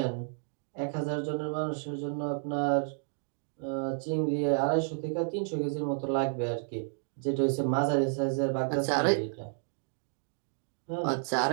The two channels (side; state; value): left; silent; digital silence